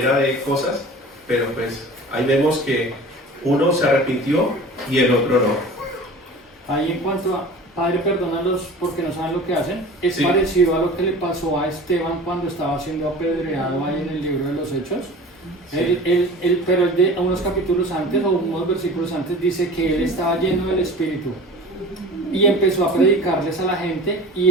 de cosas, pero pues ahí vemos que uno se arrepintió y el otro no. Ahí en cuanto a Padre, perdónalos porque no saben lo que hacen, es sí. parecido a lo que le pasó a Esteban cuando estaba siendo apedreado ahí en el libro de los Hechos. Sí. Pero de unos capítulos antes o unos versículos antes dice que él estaba lleno del Espíritu y empezó a predicarles a la gente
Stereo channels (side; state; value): both; normal; correlation 0.40